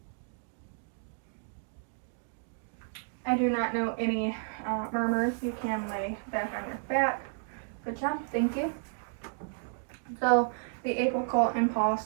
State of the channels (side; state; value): left; silent; digital silence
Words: I do not know any murmurs. You can lay back on your back. Good job. Thank you. So the apical impulse